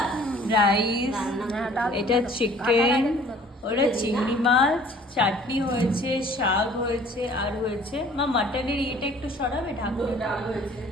এটা চিকেন, ওটা চিংড়ি মাছ, চাটনি হয়েছে, শাক হয়েছে, আর হয়েছে মা মাটনের ইয়েটা একটু সরাবে, ঢাকুনটা,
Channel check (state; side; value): normal; both; correlation 0.53